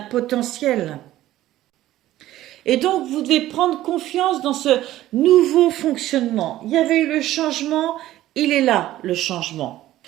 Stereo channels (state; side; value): quieter; left; 14.6 dB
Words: Et donc, vous devez prendre confiance dans ce nouveau fonctionnement. Il y avait eu le changement, il est là, le changement.